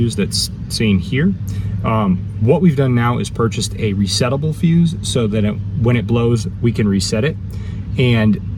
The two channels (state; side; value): identical; both; correlation 1.00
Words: that's seen here. What we've done now is purchased a resettable fuse so that when it blows, we can reset it. And